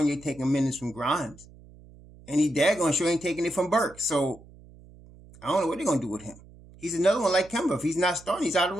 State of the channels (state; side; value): noise; right; hum, 22 dB below the sound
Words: taking minutes from Grimes. And he daggone sure ain't taking it from Burks. So I don't know what they're going to do with him. He's another one like Kemba. If he's not starting, he's out of